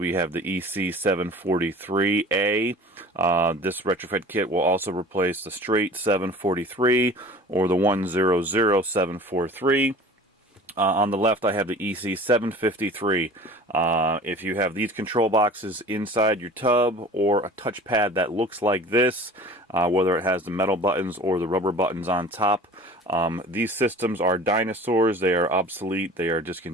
have the EC743A. This retrofit kit will also replace the straight 743 or the 100743. On the left I have the EC753. If you have these control boxes inside your tub or a touchpad that looks like this, whether it has the metal buttons or the rubber buttons on top, these systems are dinosaurs. They are obsolete. They are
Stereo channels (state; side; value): normal; both; correlation 0.42